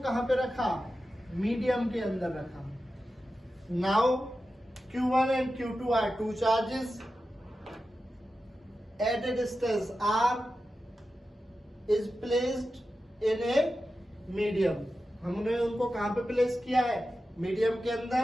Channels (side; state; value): both; normal; correlation 0.92